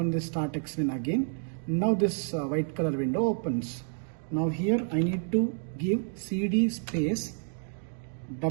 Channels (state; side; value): silent; left; digital silence